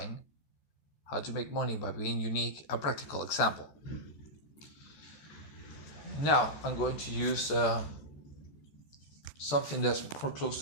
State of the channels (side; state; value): right; late; 14 ms